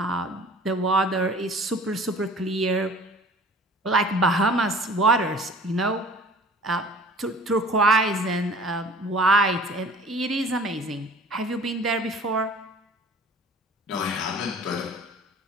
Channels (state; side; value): normal; both; correlation 0.47